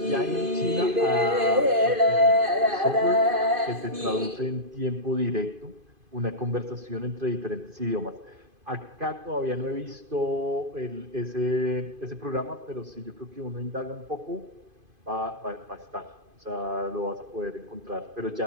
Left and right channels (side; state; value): left; late; 2.5 ms